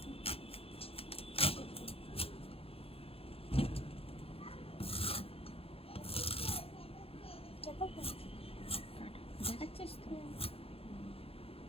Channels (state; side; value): late; right; 0.28 ms